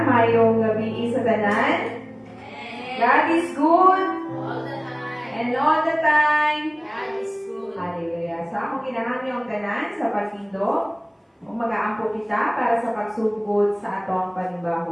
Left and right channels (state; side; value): identical; both; correlation 1.00